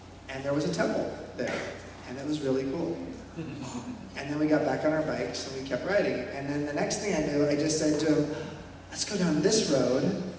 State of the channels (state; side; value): identical; both; correlation 1.00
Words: And there was a temple there, and it was really cool. And then we got back on our bikes, and we kept riding. And then the next thing I knew, I just said to him, let's go down this road.